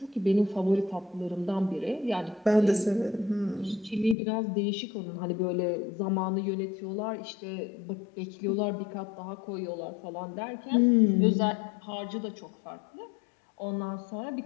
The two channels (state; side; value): drops out; right; at 4.2 s